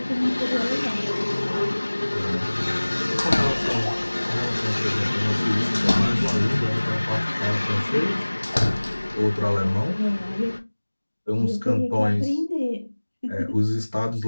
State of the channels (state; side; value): inverted; both; correlation -1.00